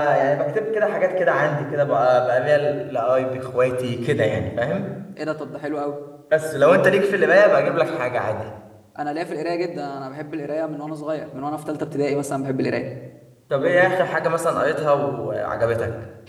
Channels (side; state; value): both; identical; correlation 1.00